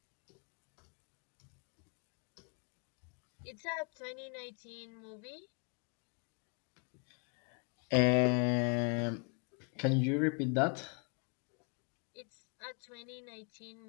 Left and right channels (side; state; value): right; quieter; 37.9 dB